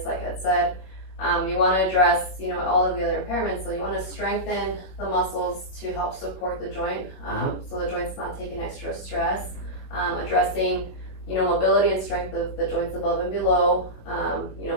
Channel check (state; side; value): late; right; 21 ms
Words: like I said, you want to address, all of the other impairments. So you want to strengthen the muscles to help support the joint, so the joint's not taking extra stress. Addressing, mobility and strength of the joints above and below.